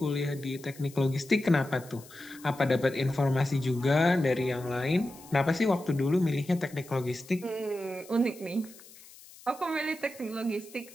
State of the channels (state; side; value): noise; left; hiss, 21 dB below the sound